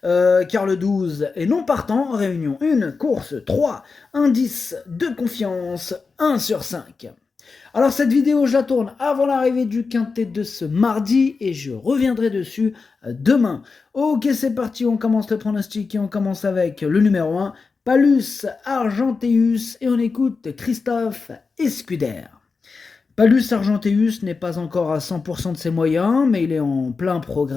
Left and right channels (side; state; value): right; quieter; 4.6 dB